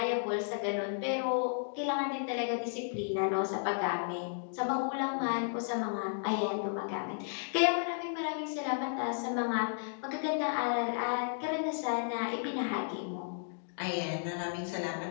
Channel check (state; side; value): silent; right; digital silence